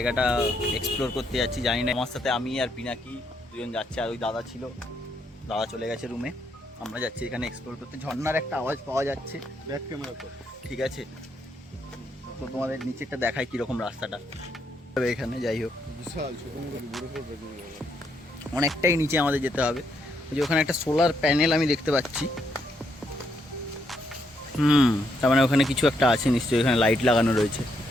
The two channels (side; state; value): both; normal; correlation 0.76